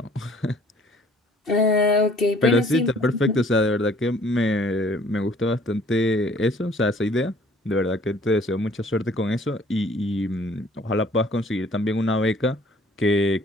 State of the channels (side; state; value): both; normal; correlation 0.56